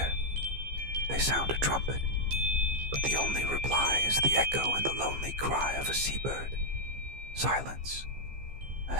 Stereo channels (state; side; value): late; left; 15 ms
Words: They sound a trumpet, but the only reply is the echo and the lonely cry of a seabird. Silence. A